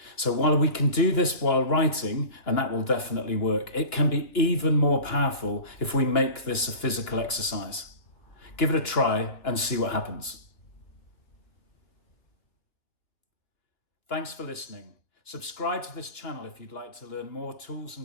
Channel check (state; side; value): late; right; 2.7 ms